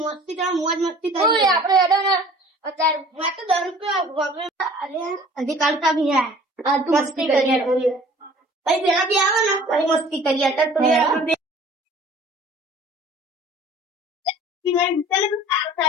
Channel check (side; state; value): both; normal; correlation 0.49